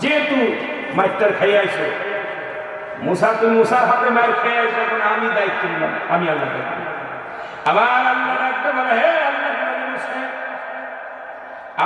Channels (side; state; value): both; identical; correlation 1.00